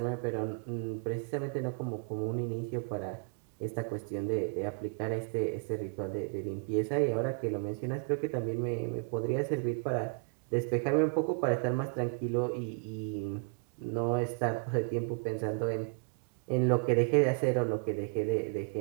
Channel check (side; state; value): left; quieter; 37.1 dB